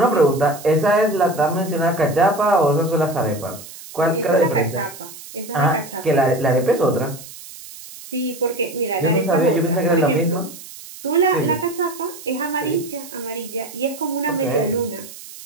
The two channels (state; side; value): noise; right; hiss, 16 dB below the sound